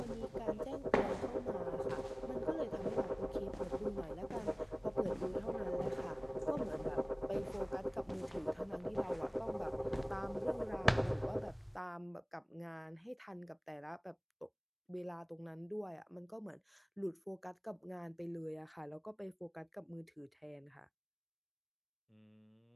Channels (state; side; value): identical; both; correlation 1.00